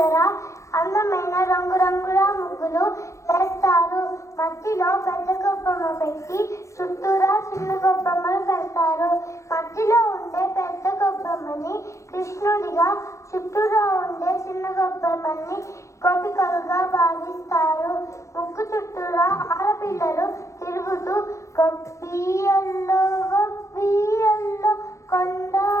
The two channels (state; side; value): late; right; 0.15 ms